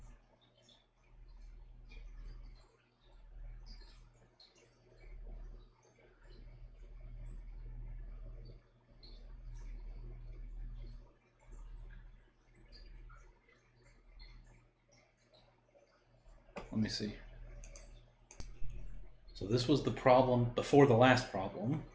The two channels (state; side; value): identical; both; correlation 1.00